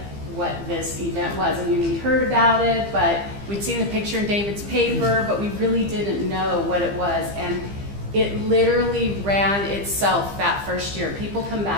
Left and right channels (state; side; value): late; left; 15 ms